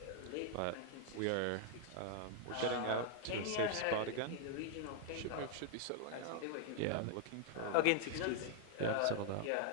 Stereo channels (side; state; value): both; different; correlation 0.00